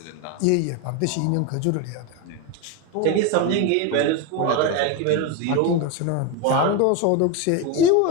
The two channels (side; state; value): both; different; correlation 0.03